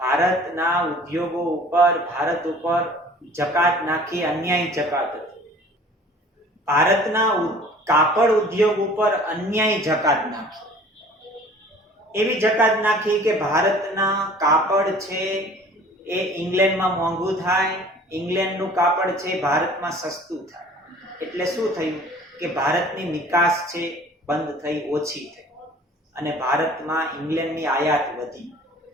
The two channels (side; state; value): both; normal; correlation 0.49